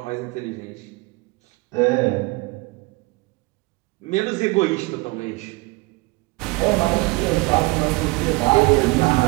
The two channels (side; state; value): left; quieter; 24.6 dB